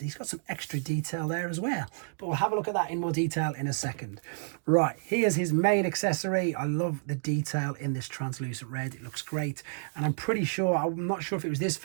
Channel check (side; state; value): left; silent; digital silence